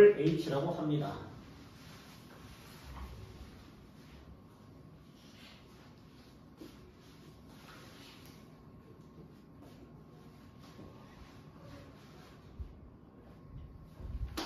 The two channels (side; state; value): both; identical; correlation 1.00